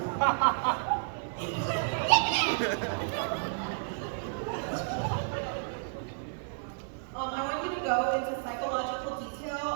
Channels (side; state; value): left; silent; digital silence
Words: I want you to go into psychological detail